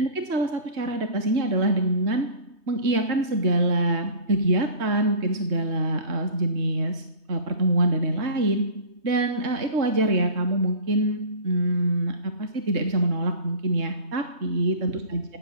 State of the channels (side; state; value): left; late; 3.2 ms